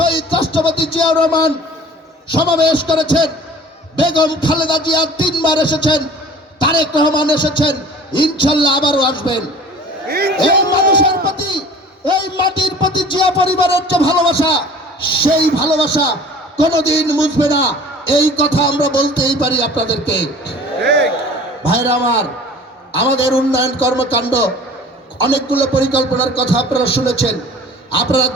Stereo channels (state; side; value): normal; both; correlation 0.45